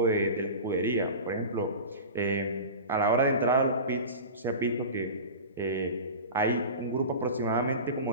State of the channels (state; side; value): inverted; both; correlation -0.31